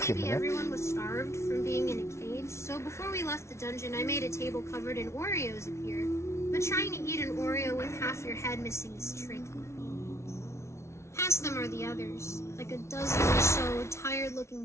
Maybe minutes. everyone was starved from being in a cage, so before we left the dungeon, I made a table covered in Oreos appear. But trying to eat an Oreo with half your head missing is tricky. Past them are the others, like a dozen or so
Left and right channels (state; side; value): late; right; 0.13 ms